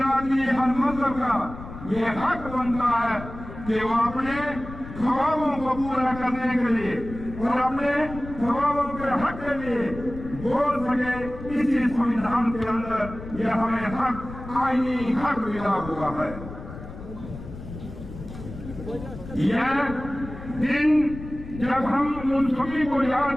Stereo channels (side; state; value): left; noise; rumble, 12 dB below the sound